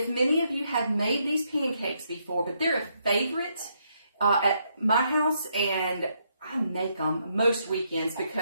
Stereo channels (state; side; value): inverted; both; correlation -0.76